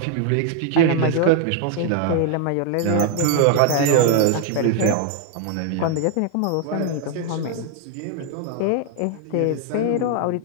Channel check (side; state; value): both; different; correlation 0.00